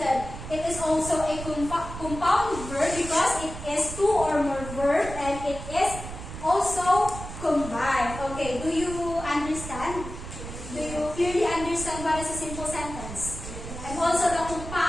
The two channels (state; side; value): noise; right; rumble, 10 dB below the sound